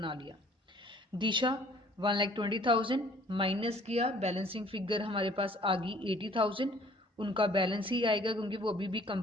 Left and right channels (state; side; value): normal; both; correlation 0.55